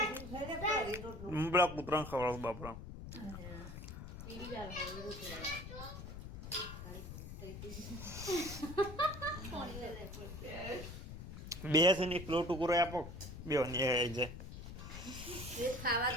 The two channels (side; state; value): left; noise; rumble, 10 dB below the sound